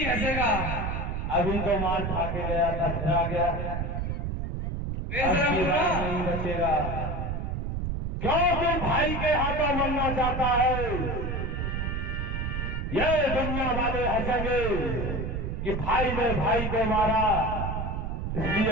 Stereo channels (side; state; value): right; noise; rumble, 2 dB below the sound